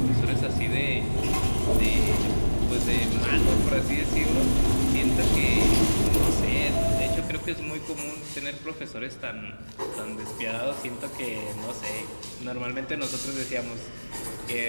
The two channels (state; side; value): inverted; both; correlation -1.00